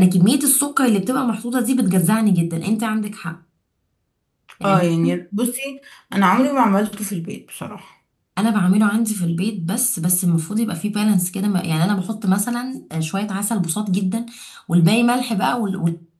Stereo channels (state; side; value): identical; both; correlation 1.00